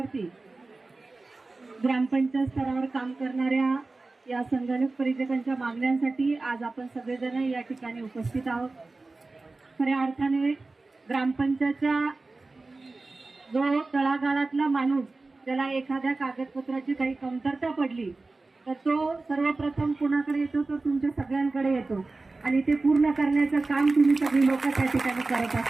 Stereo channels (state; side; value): quieter; left; 3.5 dB